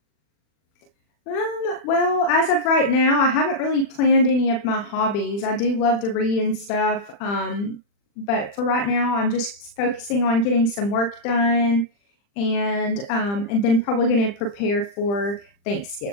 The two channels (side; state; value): right; late; 40 ms